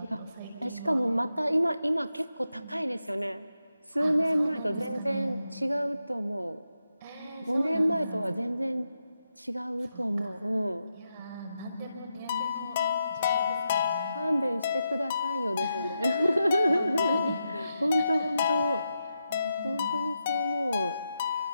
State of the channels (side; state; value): both; inverted; correlation -0.87